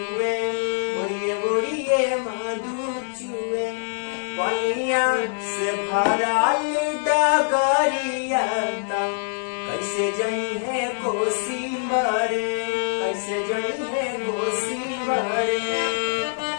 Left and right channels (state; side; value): silent; right; 63 dB below the other